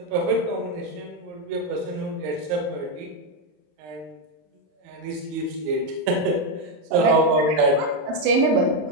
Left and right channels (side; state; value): left; late; 27 ms